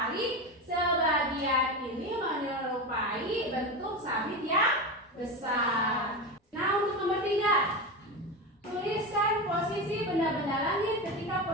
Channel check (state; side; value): normal; both; correlation 0.21